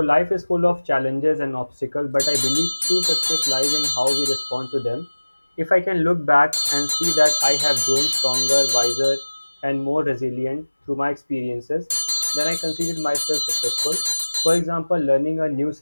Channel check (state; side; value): inverted; both; correlation -1.00